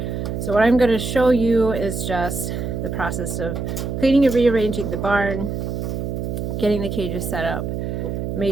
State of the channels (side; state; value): right; noise; hum, 3 dB below the sound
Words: So what I'm going to show you is just the process of cleaning and rearranging the barn, getting the cages set up,